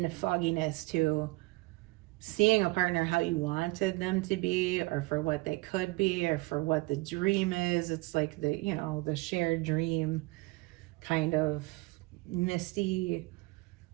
fogginess to seeing a partner how you wanted them to be, or for what they could be, or for what the dream is. It's like the, you know, the shared dream, kind of misty,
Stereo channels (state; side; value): quieter; left; 23.3 dB